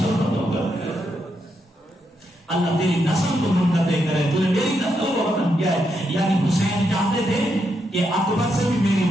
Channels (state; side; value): normal; both; correlation 0.81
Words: اللہ تیری نسل کو منقطع کرے، تو نے میری نسل کو ختم کیا ہے. یعنی حسین چاہتے تھے کہ اکبر سے بھی میری